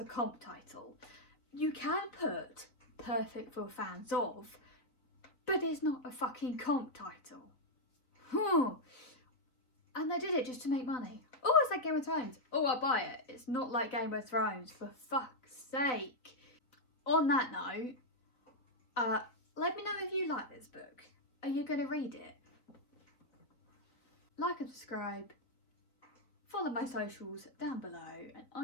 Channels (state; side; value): late; right; 3.8 ms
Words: comp title? You can put perfect for fans of, but it's not a fucking comp title. And they did it just to make money. Oh, it's like Game of Thrones. Oh, I'll buy it. It's not like Game of Thrones, for fuck's sake. On that note, let me know if you like this book. Are you going to read it? Like and subscribe. Follow my socials down below, and